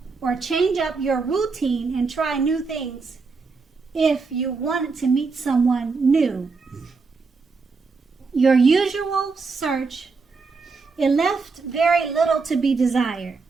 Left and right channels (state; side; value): quieter; left; 4.5 dB